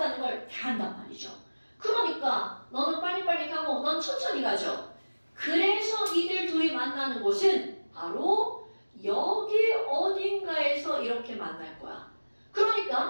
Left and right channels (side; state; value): both; inverted; correlation -1.00